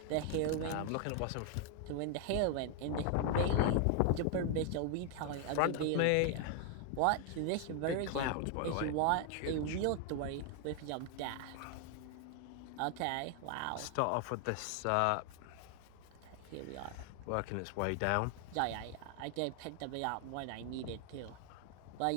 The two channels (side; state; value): both; different; correlation 0.00